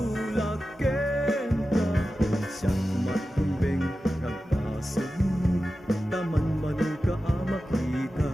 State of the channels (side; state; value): both; normal; correlation 0.93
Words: kenta, siyak matumbeng nagpasog mo, taman man ka makita.